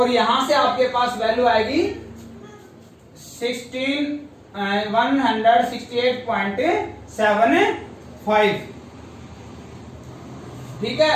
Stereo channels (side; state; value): both; identical; correlation 1.00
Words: यहां से आपके पास वैल्यू आएगी 168.75। ठीक